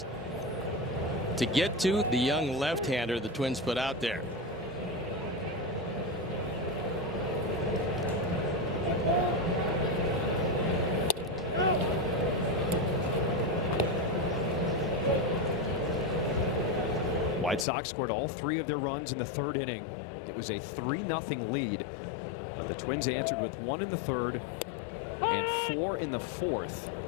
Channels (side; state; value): right; drops out; at 17.7 s